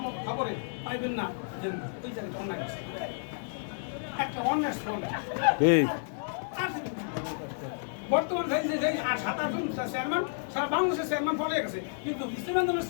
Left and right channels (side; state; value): right; silent; digital silence